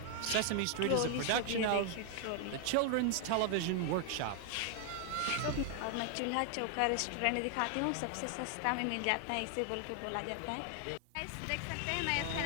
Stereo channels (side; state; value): both; different; correlation 0.00